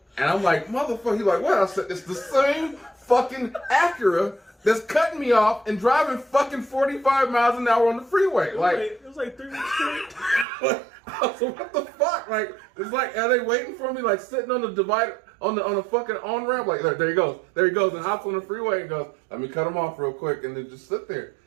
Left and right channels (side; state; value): left; drops out; at 10.5 s